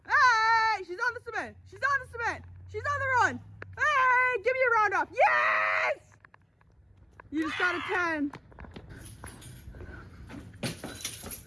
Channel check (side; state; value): both; identical; correlation 1.00